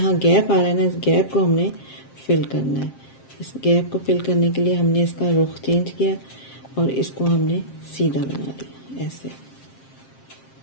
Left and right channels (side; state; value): right; late; 7.5 ms